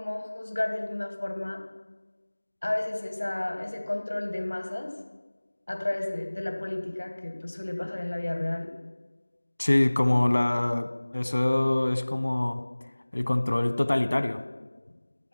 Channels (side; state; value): both; inverted; correlation -1.00